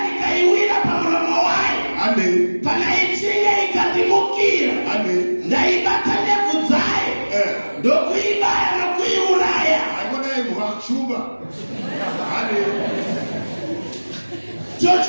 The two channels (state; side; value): inverted; both; correlation -1.00